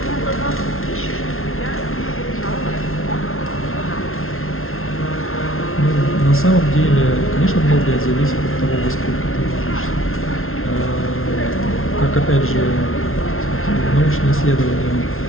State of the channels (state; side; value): late; right; 0.62 ms